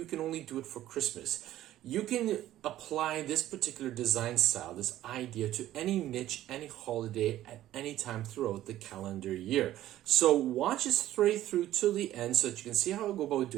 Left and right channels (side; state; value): left; quieter; 13.6 dB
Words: can only do it for Christmas. You can apply this particular design style, this idea, to any niche, any holiday, at any time throughout the calendar year. So watch it straight through to the end so that you can see how I go about